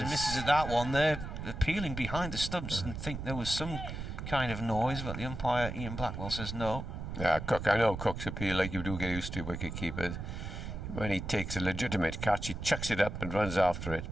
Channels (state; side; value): noise; right; rumble, 7 dB below the sound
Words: misses at that one. They're appealing behind the stumps and think there was some kind of noise, but the umpire Ian Blackwell says no. Yeah, Cook, I know Cook's appeal, like you do get used to wicket keepers. When he takes a legitimate catch, he chucks it up and runs after it,